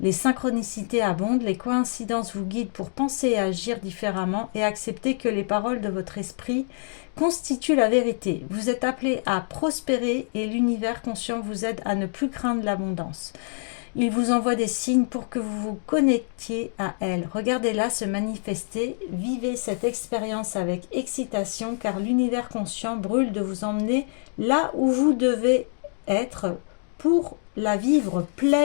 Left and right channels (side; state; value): right; silent; digital silence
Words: Les synchronicités abondent, les coïncidences vous guident pour penser et agir différemment et accepter que les paroles de votre esprit constituent la vérité. Vous êtes appelé à prospérer et l'univers conscient vous aide à ne plus craindre l'abondance. Il vous envoie des signes pour que vous vous connectiez à elle. Regardez-la se manifester, vivez cette expérience avec excitation car l'univers conscient brûle de vous emmener là où vous devez être pour la vivre